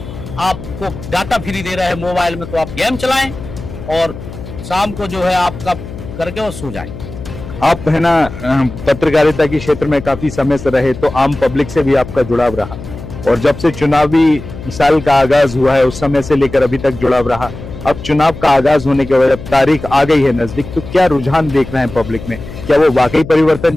आपको डाटा फ्री दे रहे हैं मोबाइल में, तो आप गेम चलाएं और शाम को जो है आपका करके और सो जाएं। आप है ना पत्रकारिता के क्षेत्र में काफी समय से रहे, तो आम पब्लिक से भी आपका जुड़ाव रहा, और जब से चुनावी साल का आगाज हुआ है उस समय से लेकर अभी तक जुड़ाव रहा। अब चुनाव का आगाज होने के बाद तारीख आ गई है नजदीक, तो क्या रुझान देख रहे हैं पब्लिक में? क्या वो वाकई परिवर्तन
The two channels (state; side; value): noise; left; hum, 12 dB below the sound